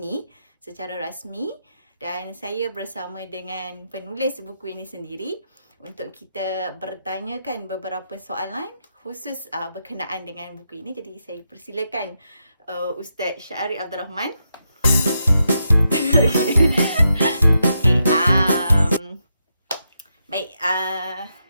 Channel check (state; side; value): inverted; both; correlation -0.84